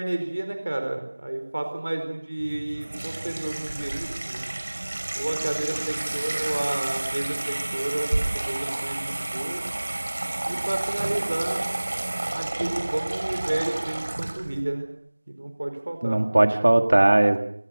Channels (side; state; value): both; inverted; correlation -1.00